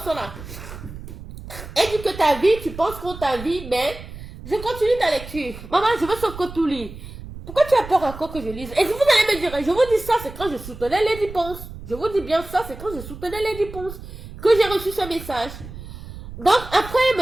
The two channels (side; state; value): right; noise; rumble, 13 dB below the sound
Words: sont là. Elle dit que ta vie, tu penses qu'on t'a vie, mais je continue ta lecture. Maman, je veux sauf que tout lit. Pourquoi tu as peur encore que je lise? Et vous allez me dire, je vous dis ça, c'est quand je soutenais Lady Ponce. Je vous dis bien ça, c'est quand je soutenais Lady Ponce que j'ai reçu ce message. Donc, après,